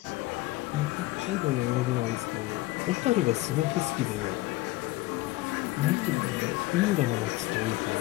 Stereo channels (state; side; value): quieter; right; 18.6 dB